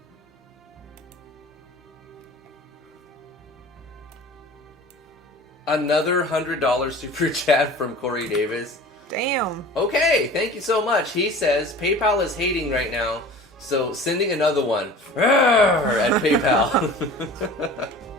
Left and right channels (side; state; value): both; normal; correlation 0.41